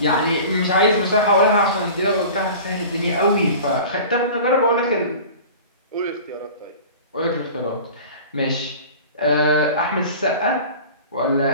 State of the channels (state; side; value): inverted; both; correlation -0.39